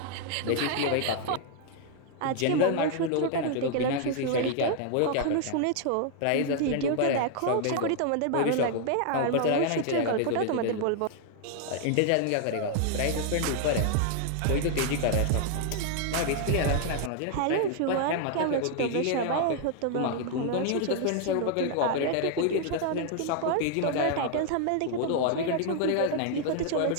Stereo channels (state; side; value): different; both; correlation 0.00